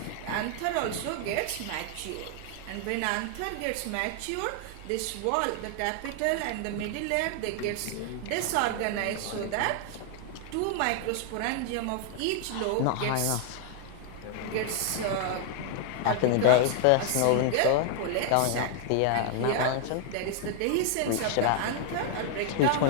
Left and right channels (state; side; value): different; both; correlation 0.00